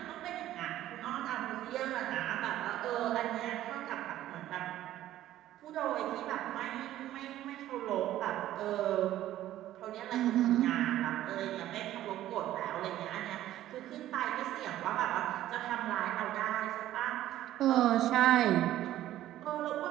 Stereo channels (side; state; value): left; quieter; 13.5 dB